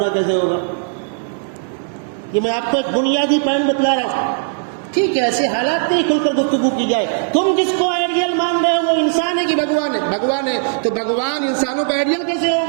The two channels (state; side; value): silent; left; 64 dB below the other